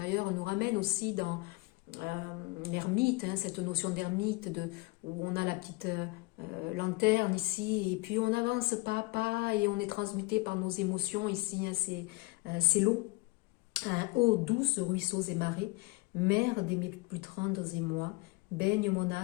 nous ramène aussi dans l'ermite, hein, cette notion d'ermite, où on a la petite lanterne ici, et puis on avance pas à pas, et on est transmuté par nos émotions ici, hein, c'est l'eau. Ô douce ruisseaux et marais, mère des mes plus tendres émois, baigne mon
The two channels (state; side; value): quieter; right; 23.4 dB